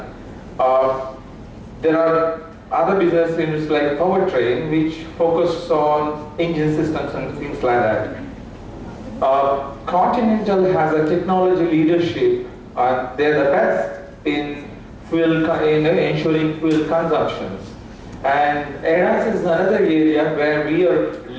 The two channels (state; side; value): identical; both; correlation 1.00